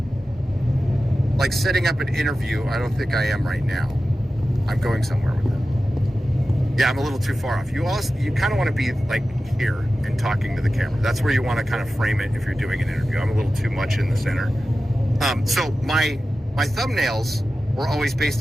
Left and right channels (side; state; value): both; normal; correlation 0.94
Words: like, setting up an interview. I don't think I am right now. I'm going somewhere with it. Yeah, I'm a little too far off. You kind of want to be like here and talking to the camera. That's where you want to kind of frame it if you're doing an interview. I'm a little too much in the center. So my thumbnails were always